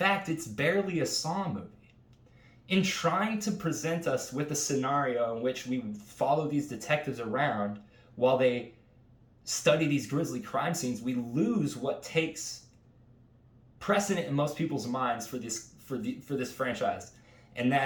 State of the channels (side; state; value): both; identical; correlation 1.00